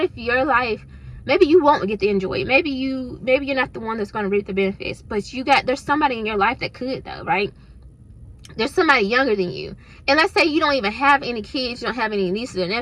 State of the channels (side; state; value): both; identical; correlation 1.00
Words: if your life, maybe you won't get to enjoy it. Maybe you're not the one that's going to reap the benefits, but there's somebody in your life that could, though, right? There's somebody younger than you. And let's say you don't even have any kids, you don't have any nieces or